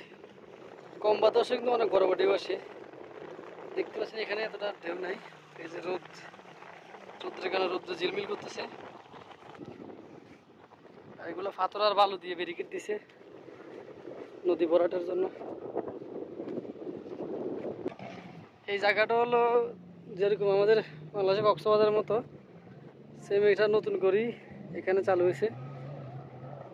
কম বাতাসে কিন্তু অনেক বড় বড় ঢেউ আসে। দেখতে পাচ্ছেন এখানে এতটা ঢেউ নাই। এই যে রৌদ্রের কারণে রৌদ্র ঝিলমিল করতেছে। এগুলো পাথর আর বালু দিয়ে ব্যারিকেড দিছে নদী ভরাটের জন্য। এই জায়গাটা হলো যেরকম আমাদের বাংলাদেশে কক্সবাজারের মতো সেম, এটা নতুন করেই এখানে চালু হয়েছে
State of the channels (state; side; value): identical; both; correlation 1.00